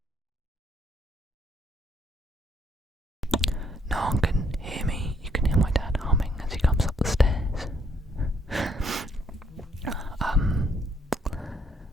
No one can hear me. You can hear my dad humming as he comes up the stairs.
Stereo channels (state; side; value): normal; both; correlation 0.70